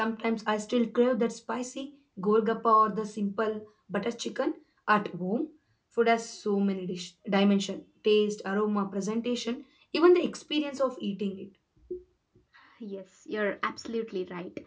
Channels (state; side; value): identical; both; correlation 1.00